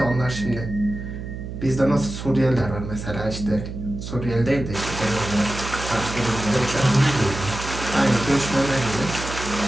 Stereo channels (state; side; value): noise; right; hum, 8 dB below the sound